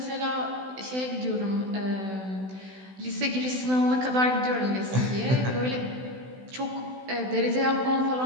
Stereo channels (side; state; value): left; late; 16 ms